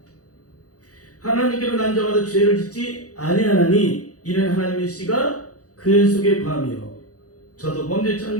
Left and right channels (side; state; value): right; late; 0.67 ms